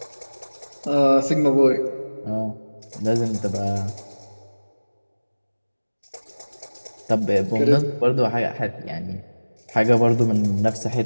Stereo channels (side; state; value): both; inverted; correlation -1.00